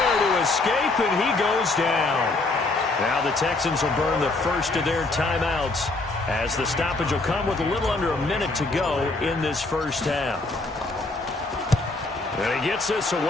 to escape, and he goes down. Now the Texans will burn the first of their timeouts as the stoppage will come with a little under a minute to go in this first half. And he gets this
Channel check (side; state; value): right; quieter; 3.2 dB